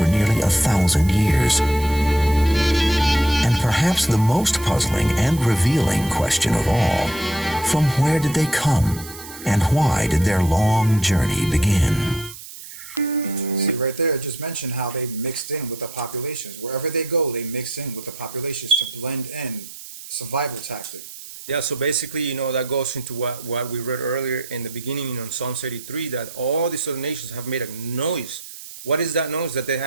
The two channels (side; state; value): right; noise; hiss, 14 dB below the sound